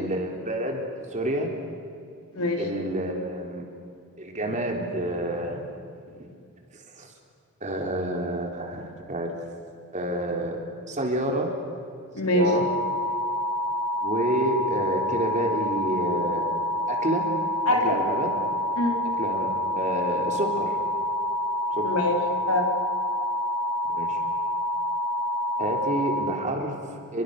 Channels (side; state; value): both; normal; correlation 0.23